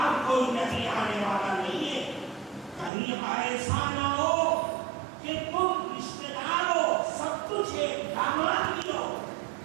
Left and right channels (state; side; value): drops out; left; at 2.9 s